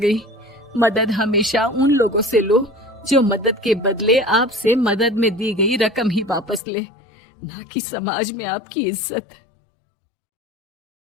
मदद हमेशा उन लोगों से लो जो मदद के बदले आपसे मदद में दी गई रकम ही वापस लें, ना कि समाज में आपकी इज्जत।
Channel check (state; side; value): drops out; right; at 6.6 s